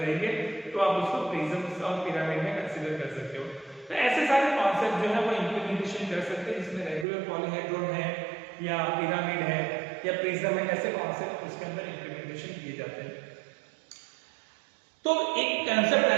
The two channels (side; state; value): left; drops out; at 7.1 s